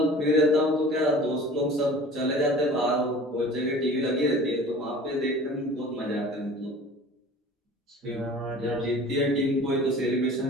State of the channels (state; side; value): normal; both; correlation 0.43